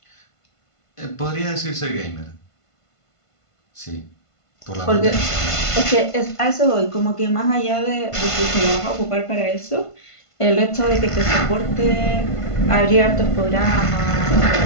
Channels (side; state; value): right; late; 1.5 ms